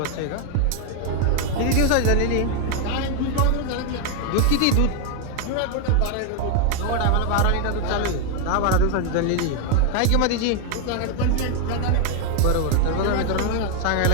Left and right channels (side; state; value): both; different; correlation 0.01